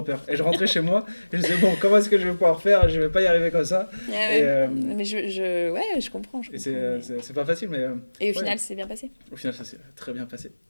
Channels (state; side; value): inverted; both; correlation -1.00